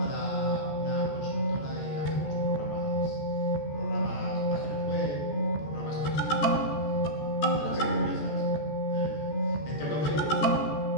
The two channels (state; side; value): late; right; 14 ms